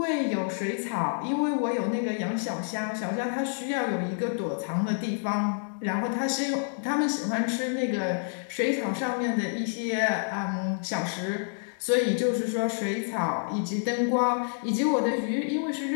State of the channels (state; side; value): silent; right; 59 dB below the other